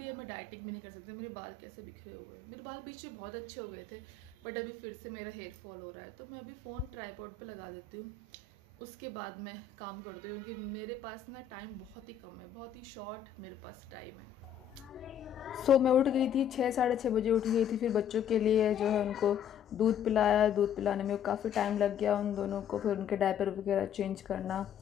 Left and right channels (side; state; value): right; quieter; 8.2 dB